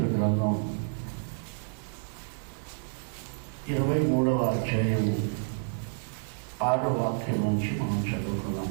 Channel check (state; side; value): silent; left; digital silence